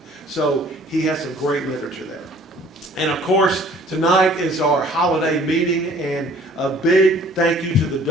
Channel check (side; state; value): both; normal; correlation 0.54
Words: So he has some great literature there. And of course, tonight is our holiday meeting, and a big thank you to the